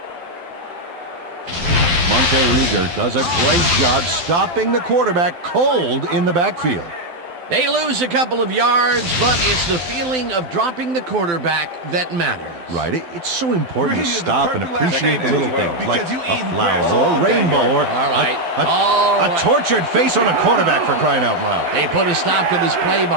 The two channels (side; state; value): left; late; 12 ms